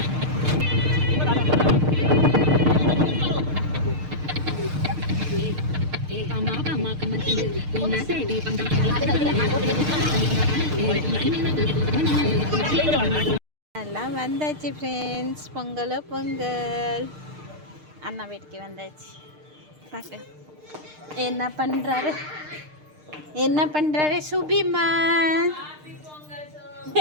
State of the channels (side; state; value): left; late; 6.6 ms